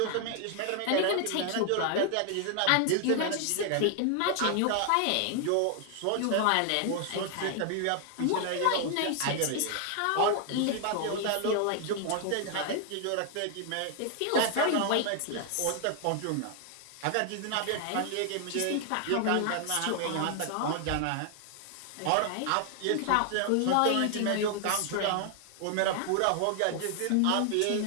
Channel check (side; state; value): both; different; correlation 0.00